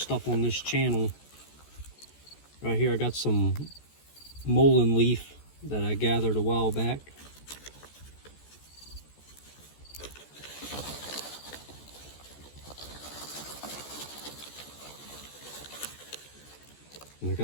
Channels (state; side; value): late; right; 14 ms